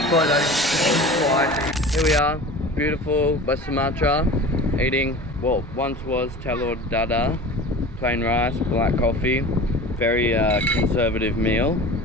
Here we are, beautiful West Sumatra, eating, well, once was telur dadah, plain rice, black coffee, very conservative meal,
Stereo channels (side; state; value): both; normal; correlation 0.37